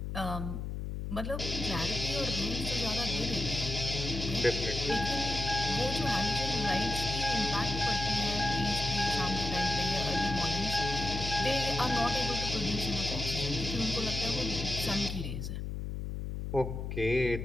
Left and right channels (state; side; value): noise; left; hum, 4 dB below the sound